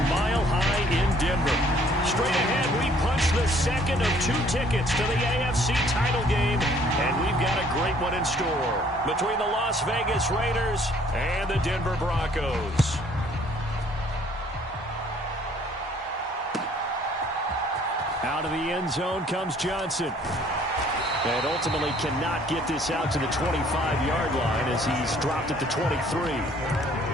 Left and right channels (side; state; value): both; normal; correlation 0.59